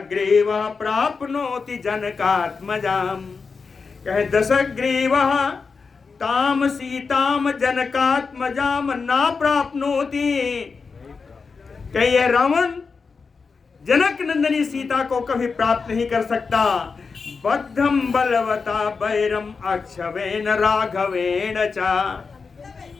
प्राप्नोति जनकात्मजाम, कहे दशग्रीवः ताम सीताम जनकात्मजाम ना प्राप्नोति, कहे ये रावण जनक नंदनी सीता को कभी प्राप्त नहीं कर सकता। बद्धम बलवता वैरम अक्षवेन राघवेन चा,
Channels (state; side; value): quieter; right; 4.9 dB